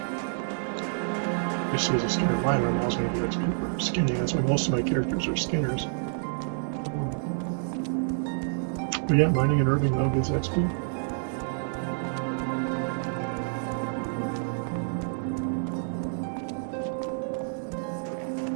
You see as a skinner miner, I'm always going to get XP for skinning. That's why most of my characters are skinners. But yeah, mining and herbing now gets XP.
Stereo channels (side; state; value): left; silent; digital silence